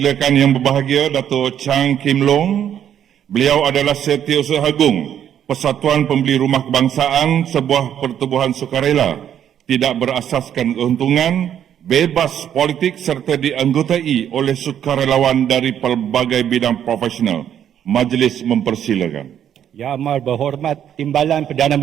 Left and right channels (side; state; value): left; quieter; 9.7 dB